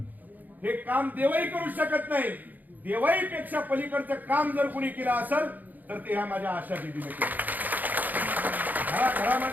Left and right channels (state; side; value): late; left; 0.083 ms